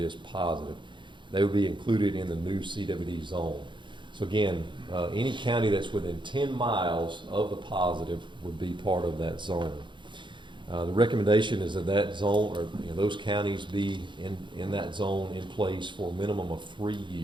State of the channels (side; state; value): left; late; 0.23 ms